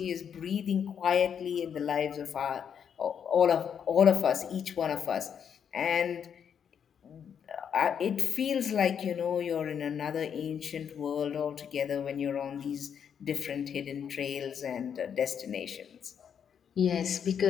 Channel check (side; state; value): right; quieter; 7.9 dB